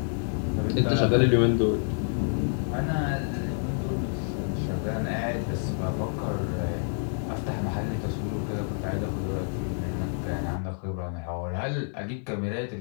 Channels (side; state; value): right; silent; 57 dB below the other